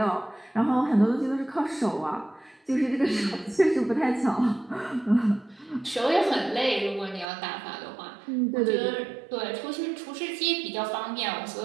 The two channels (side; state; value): left; drops out; at 7.2 s